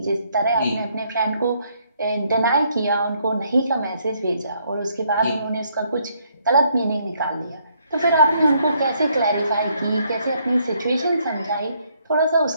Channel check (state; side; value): inverted; both; correlation -0.70